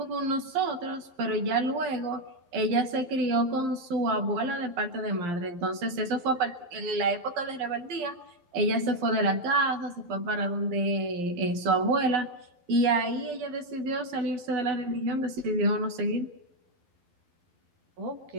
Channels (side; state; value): left; late; 11 ms